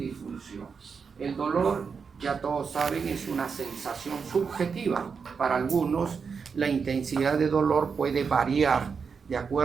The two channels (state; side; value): quieter; left; 5.7 dB